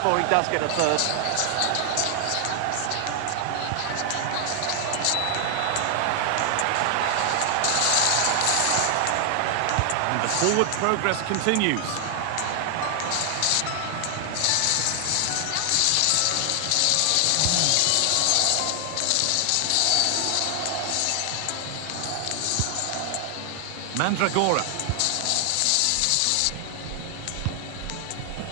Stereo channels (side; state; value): both; different; correlation 0.00